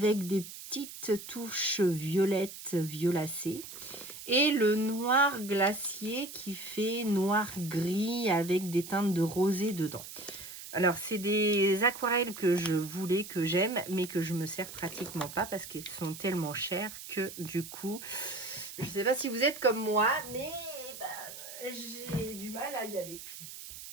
des petites touches violettes violacées, et le noir glacier qui fait noir-gris avec des teintes de rosé dedans. Alors, c'est des aquarelles que je voulais, que j'aime, mais que je me sers pratiquement pas parce qu'elles sont tellement chères que du coup, je sais pas si vous êtes comme moi, mais j'ai du mal à y aller.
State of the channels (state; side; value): noise; right; hiss, 12 dB below the sound